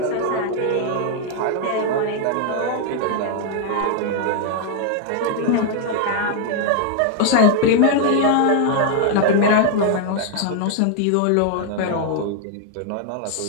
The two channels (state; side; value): different; both; correlation 0.00